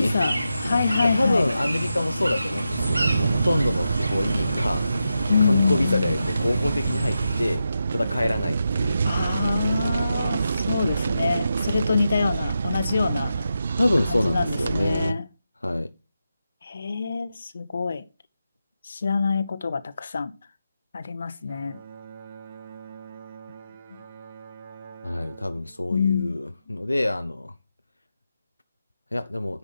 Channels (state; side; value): inverted; both; correlation -0.88